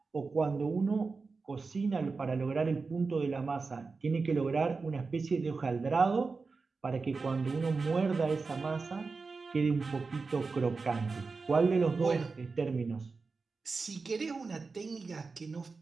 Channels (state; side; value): quieter; left; 4.3 dB